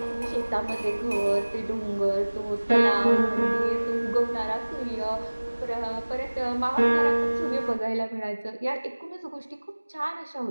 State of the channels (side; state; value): both; inverted; correlation -1.00